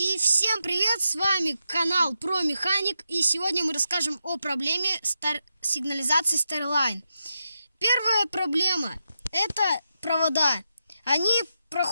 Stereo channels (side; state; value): both; inverted; correlation -0.86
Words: всем привет, с вами канал Про Механик, и сегодня мы расскажем о проблеме сигнализации Starline. Первая проблема – это провода. Они